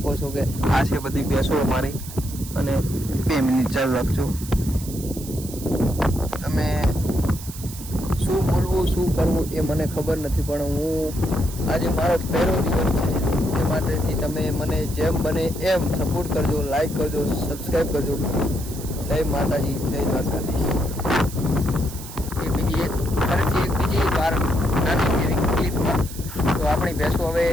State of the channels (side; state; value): right; noise; hiss, 13 dB below the sound